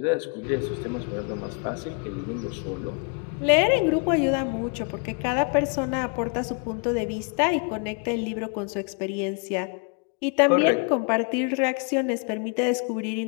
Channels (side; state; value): right; quieter; 36.5 dB